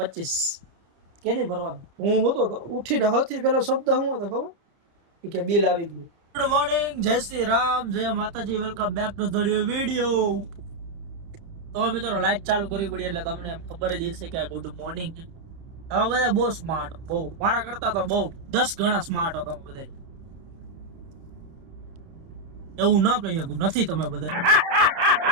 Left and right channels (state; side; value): late; left; 30 ms